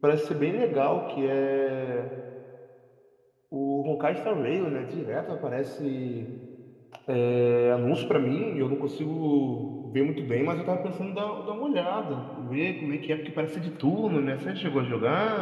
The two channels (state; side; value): identical; both; correlation 1.00